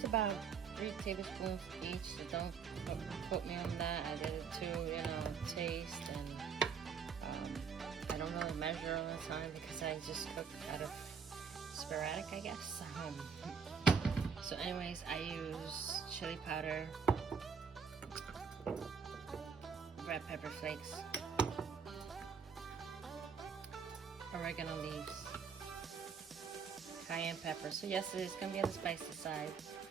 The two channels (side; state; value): left; quieter; 6.2 dB